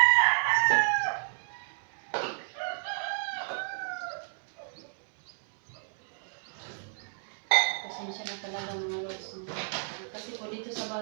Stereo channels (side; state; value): left; silent; 57 dB below the other